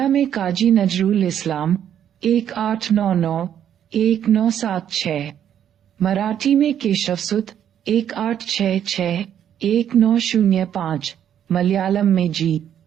में काजी नजरुल इस्लाम 1899-1976, मराठी में केशवसुत 1866-1905, मलयालम में जी.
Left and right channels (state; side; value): quieter; left; 9.8 dB